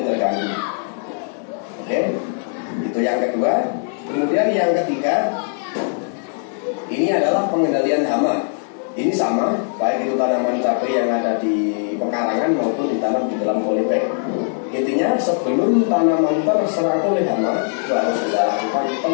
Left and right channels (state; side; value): silent; right; 66 dB below the other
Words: terganggu. Oke, itu yang kedua. Kemudian yang ketiga, ini adalah pengendalian hama. Ini sama, baik itu tanaman cabai yang ada di pekarangan maupun ditanam di dalam polybag. Intinya sebelum tanaman terserang oleh hama, itu harus kita lakukan